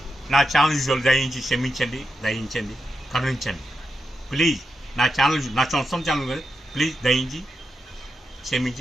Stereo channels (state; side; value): normal; both; correlation 0.87